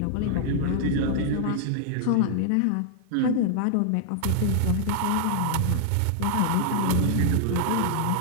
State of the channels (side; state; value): both; different; correlation -0.01